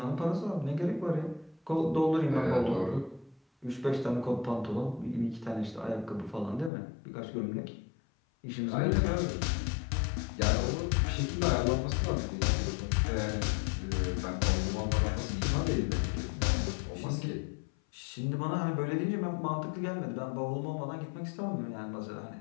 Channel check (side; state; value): right; drops out; at 6.7 s